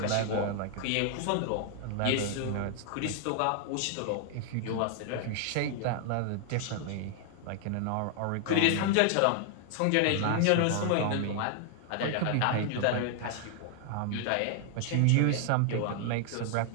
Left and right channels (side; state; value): both; different; correlation 0.00